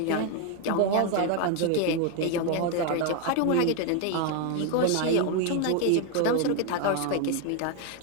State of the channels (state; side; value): different; both; correlation 0.01